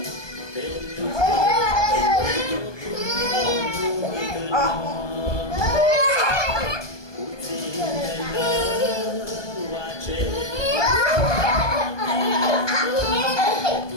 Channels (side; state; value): right; late; 1.2 ms